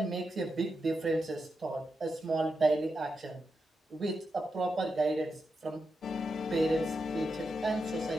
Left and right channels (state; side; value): normal; both; correlation 0.87